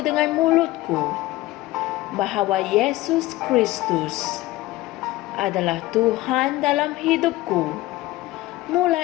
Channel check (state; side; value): quieter; right; 17.9 dB